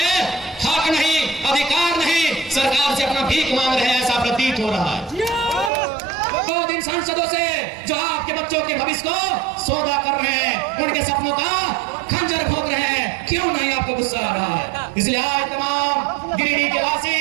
हक नहीं, अधिकार नहीं, सरकार से अपना भीख मांग रहे हैं, ऐसा प्रतीत हो रहा है। 2 दिन सांसदों से जो आपके बच्चों के भविष्य को सौदा कर रहे हैं, उनके सपनों का खंजर भोग रहे हैं, क्यों नहीं आपको गुस्सा आ रहा है? इसलिए आज तमाम गिरिडीह के वासी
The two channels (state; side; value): drops out; left; at 5.7 s